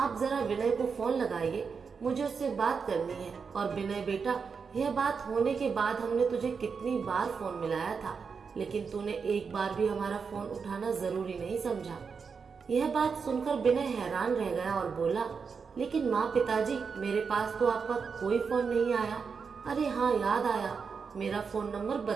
जरा विनय को फोन लगाइए, मुझे उससे बात करनी है। और विनय बेटा, यह बात होने के बाद हमने तुझे कितनी बार फोन मिलाया था, लेकिन तूने एक बार भी हमारा फोन उठाना जरूरी नहीं समझा। यह बात सुनकर विनय हैरान रह गया और बोला, लेकिन माँ पिताजी, मेरे पास तो आपका कोई फोन नहीं आया। अरे हाँ, याद आया, मेरा फोन नंबर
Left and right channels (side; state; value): left; quieter; 5.6 dB